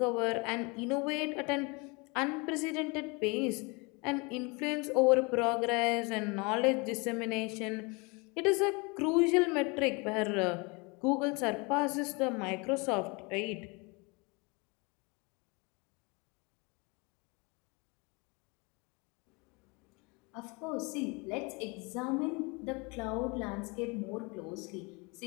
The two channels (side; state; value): right; quieter; 28.8 dB